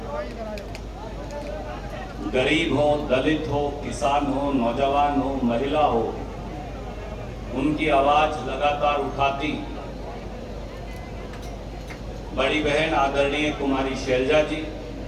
गरीब हो, दलित हो, किसान हो, नौजवान हो, महिला हो, उनकी आवाज लगातार उठाती बड़ी बहन आदरणीय कुमारी शैलजा जी,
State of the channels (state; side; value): identical; both; correlation 1.00